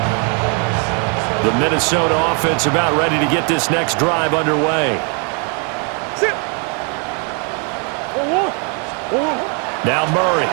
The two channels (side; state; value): left; quieter; 38.4 dB